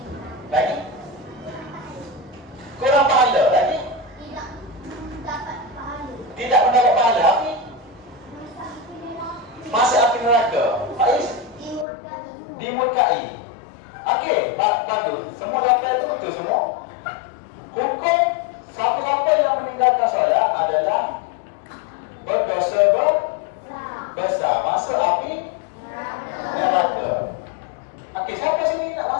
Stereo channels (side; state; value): right; drops out; at 11.9 s